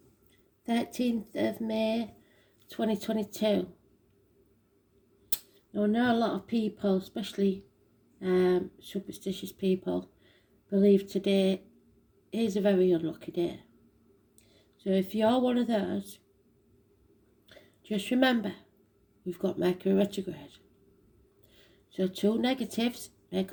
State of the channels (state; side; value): identical; both; correlation 1.00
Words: 13th of May 2022. Now, I know a lot of people, especially superstitious people, believe today is a very unlucky day. So if you're one of those, just remember, we've got Mercury retrograde. So two negatives make a